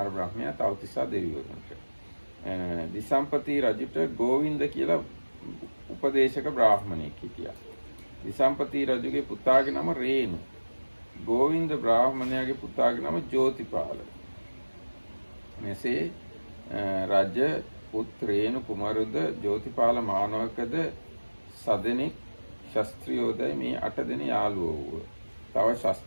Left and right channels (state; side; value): inverted; both; correlation -1.00